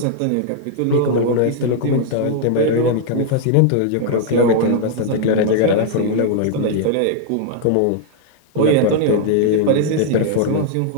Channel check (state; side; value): different; both; correlation -0.01